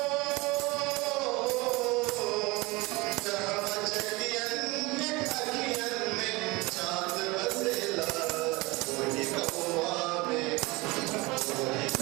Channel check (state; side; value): quieter; left; 23.5 dB